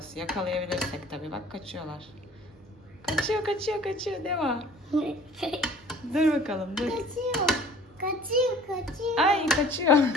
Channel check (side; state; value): both; normal; correlation 0.49